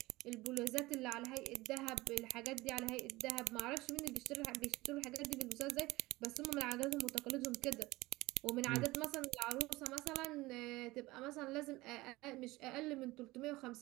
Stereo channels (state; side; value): quieter; left; 20.0 dB